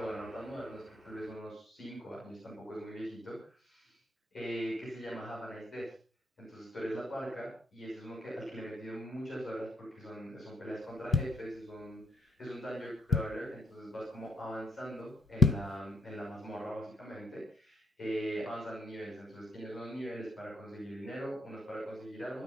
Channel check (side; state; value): both; normal; correlation 0.73